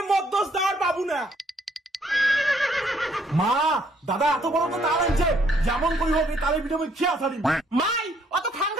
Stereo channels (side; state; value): both; normal; correlation 0.67